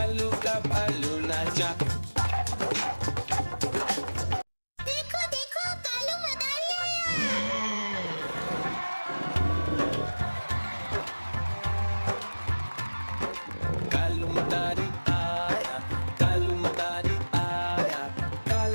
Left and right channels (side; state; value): both; inverted; correlation -1.00